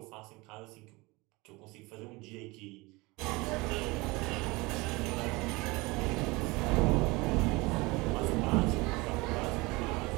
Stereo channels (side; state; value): left; quieter; 23.9 dB